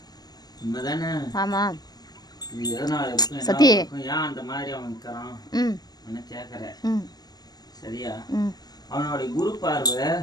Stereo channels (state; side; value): late; right; 0.20 ms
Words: உண்மைதானே? ஆமாம். இது எதனால இருக்கும், என்ன சத்தி. இருக்கும், ஏன் அந்த மாதிரி அவன் இருக்கிறான் ம் என்ன கேட்கற? ம் சரியா? ம் அவனுடைய குரு பார்வை